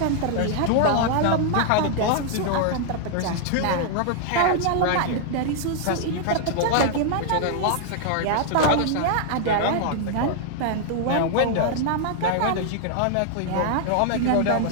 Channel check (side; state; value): both; different; correlation 0.00